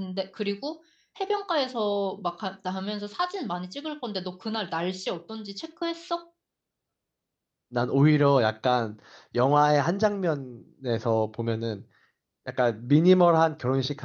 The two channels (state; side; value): identical; both; correlation 1.00